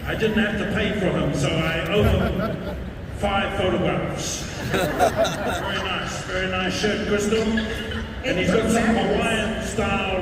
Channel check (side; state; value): both; identical; correlation 1.00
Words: I didn't have to pay for them, so I owe them 5 photographs. Very nice shirt, Crystal. And he's got some Hawaiian style